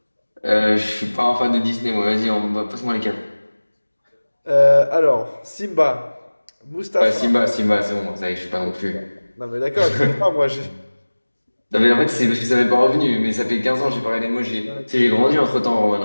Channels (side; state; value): both; inverted; correlation -1.00